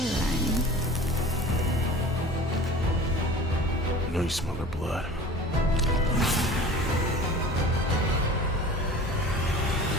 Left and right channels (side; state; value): both; normal; correlation 0.40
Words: I know you smell her blood.